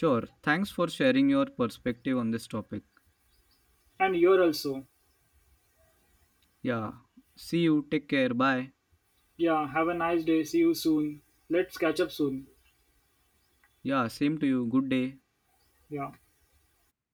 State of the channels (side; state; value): both; identical; correlation 1.00